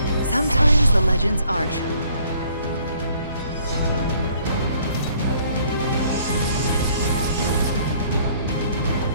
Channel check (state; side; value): inverted; both; correlation -0.61